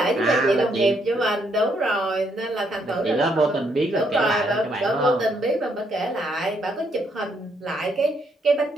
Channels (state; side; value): normal; both; correlation 0.73